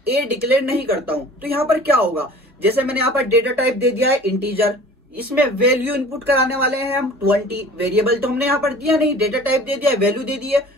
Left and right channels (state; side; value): normal; both; correlation 0.45